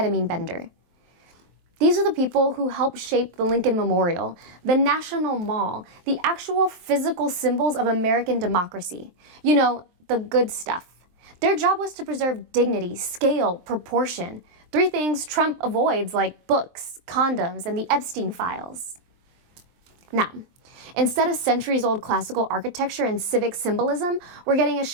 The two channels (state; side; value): late; left; 23 ms